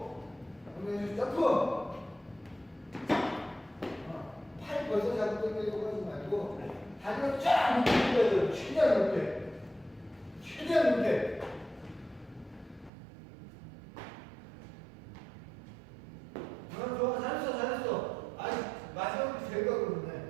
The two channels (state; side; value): drops out; left; at 12.9 s